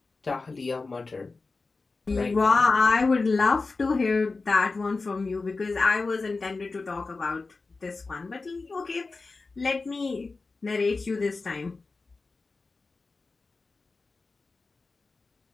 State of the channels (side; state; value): right; quieter; 3.9 dB